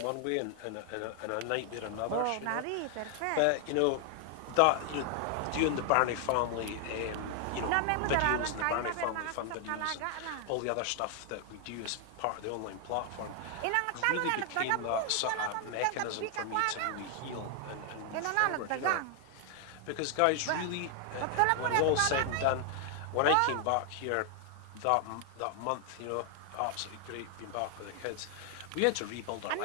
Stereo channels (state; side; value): different; both; correlation 0.00